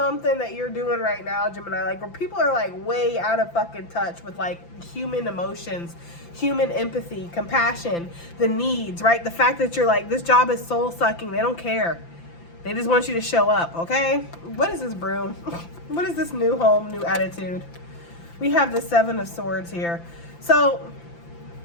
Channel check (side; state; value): right; late; 5.9 ms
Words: that you're doing right now, Gemini. Like, where people are like way out of fucking touch with like human emotions, human empathy, compassion, the needs, right? The fact that you're like, this job is soul sucking. They don't care. They just want you to show up, okay? What is this broom? What is this new home, new attitude? We have the Seven of Swords here. So